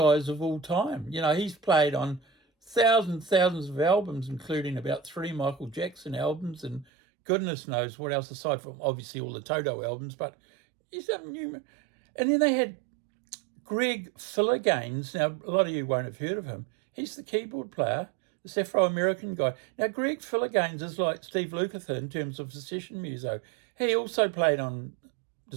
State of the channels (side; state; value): left; drops out; at 6.9 s